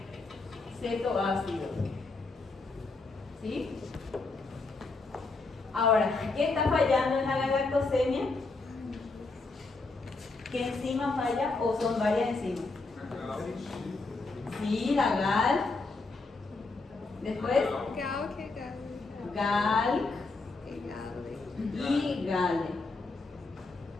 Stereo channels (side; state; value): right; quieter; 3.6 dB